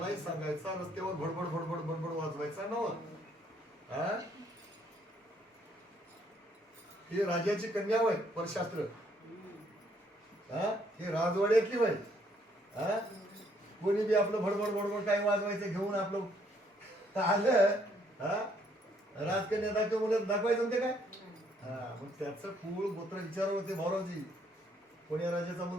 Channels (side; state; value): both; normal; correlation 0.68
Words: सांगायचा, रस्त्यावर भडबड भडबड भडबड वाजवायचा नव्हता. ही राजाची कन्या होय परशास्त्र. हे राजवाड्यातली होय. कोणी बी आपलं भडबड भडबड काय वाजवायचं घेऊन आपलं आलं, राजकन्या दाखव मुलं दाखवायचं ते काय. मग त्याचं कुळ गोत्र विचार होते भाऊरावजी. कोण्या राजाचा